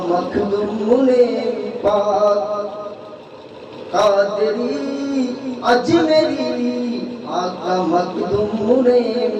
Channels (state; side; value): identical; both; correlation 1.00